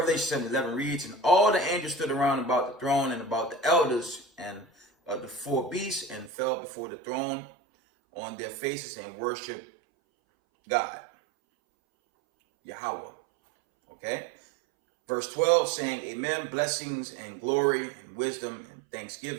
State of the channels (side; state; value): left; drops out; at 6.3 s